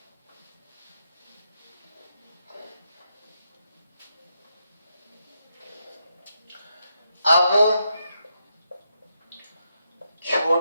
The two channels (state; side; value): inverted; both; correlation -0.82